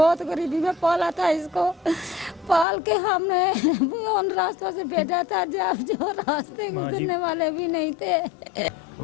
गरीबी में पाला था इसको, पाल के हमने उन रास्तों से भेजा था जब जो रास्ते गुजरने वाले भी नहीं थे।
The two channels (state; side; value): drops out; right; at 2.7 s